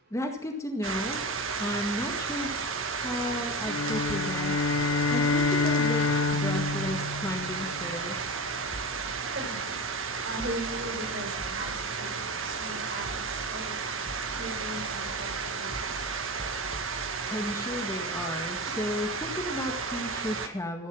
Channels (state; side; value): normal; both; correlation 0.26